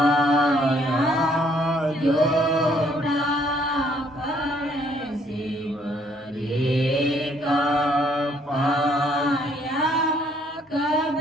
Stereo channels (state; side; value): normal; both; correlation 0.66